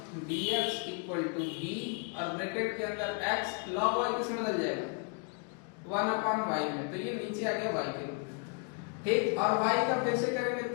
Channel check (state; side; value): quieter; right; 36.4 dB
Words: dx equal to v और ब्रैकेट के अंदर x log y किसमें बदल जाएगा, 1 अपॉन y में, तो ये नीचे आ गया y के। ठीक, और y का फिर से करेंगे